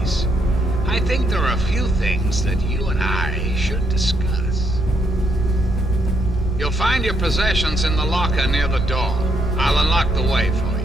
I think there are a few things that you and I should discuss. You'll find your possessions in the locker near the door. I'll unlock the way for you.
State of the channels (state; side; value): normal; both; correlation 0.74